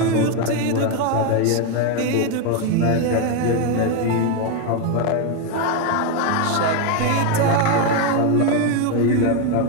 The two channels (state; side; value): different; both; correlation 0.02